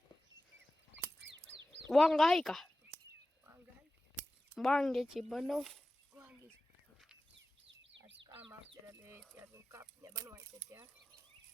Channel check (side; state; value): both; normal; correlation 0.95